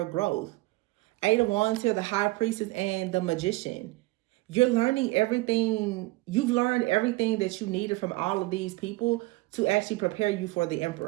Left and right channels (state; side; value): quieter; left; 21.2 dB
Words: growth. 8 of Wands here, the High Priestess and the Magician. You're learning everything. You've learned everything that you needed from all of these people to actually prepare you for the